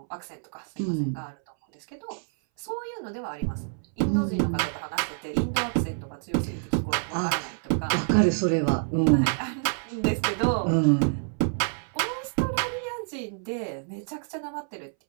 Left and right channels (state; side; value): silent; left; 60 dB below the other